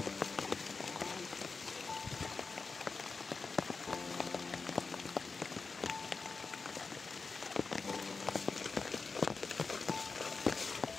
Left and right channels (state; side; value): quieter; right; 4.4 dB